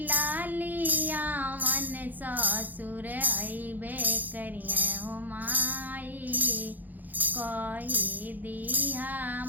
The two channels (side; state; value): left; late; 0.084 ms